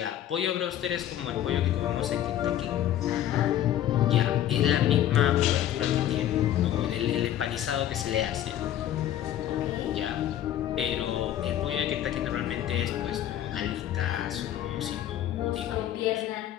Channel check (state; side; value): quieter; right; 11.7 dB